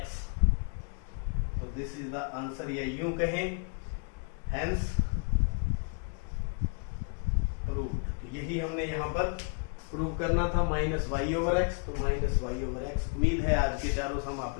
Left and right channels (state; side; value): quieter; right; 38.7 dB